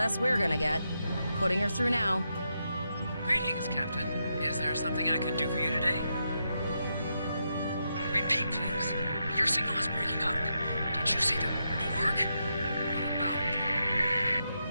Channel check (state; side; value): inverted; both; correlation -0.84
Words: we're gonna get. Putting her through now. Greetings, Captain. Is there something I could do for you today? Repeat, please. Your signal is breaking up. Did you see the Borg? What about...